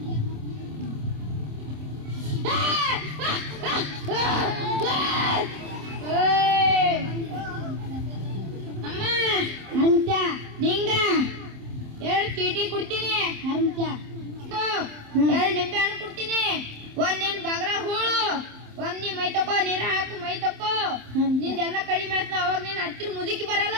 ಅಮ್ಮ ಹರ್ಮತ್ಯ, ನಿಂಗ 2 ಚೀಟಿ ಕೊಡ್ತೀನಿ. ಹರ್ಮತ್ಯ 2 ನಿಂಬೆ ಹಣ್ಣು ಕೊಡ್ತೀನಿ. 1 ನಿನ್ ಬಗರ ಹೂಳು, 1 ನೀ ಮೈ ತಕೋ, ನೀರ ಹಾಕು ಮೈ ತಕೋ. ನಿಂದೆಲ್ಲ ಕಡಿಮೆ ಆಯ್ತು. ಅವಾಗ ನೀನ್ ಹತ್ತಿರ ಮುದುಕಿ ಬರಲ್ಲ.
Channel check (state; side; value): late; left; 27 ms